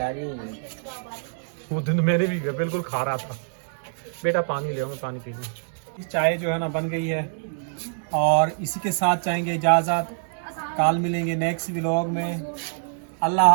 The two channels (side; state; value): left; silent; digital silence